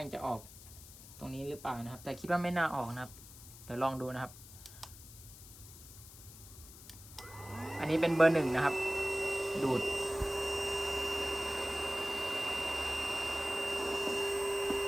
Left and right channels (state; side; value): noise; left; hiss, 17 dB below the sound